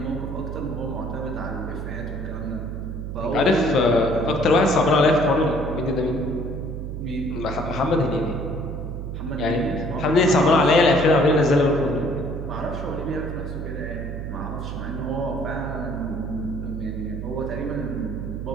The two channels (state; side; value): noise; right; hum, 6 dB below the sound